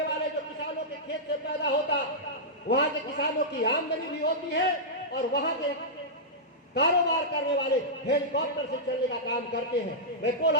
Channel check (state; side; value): normal; both; correlation -0.11